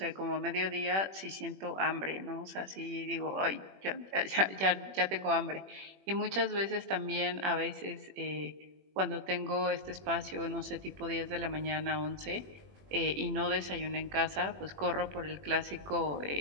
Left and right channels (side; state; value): left; late; 21 ms